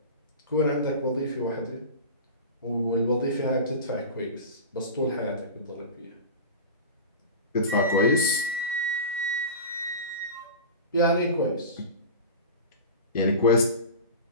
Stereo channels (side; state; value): both; inverted; correlation -0.30